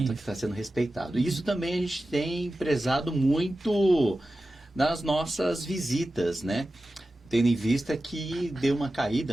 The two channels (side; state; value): both; normal; correlation 0.94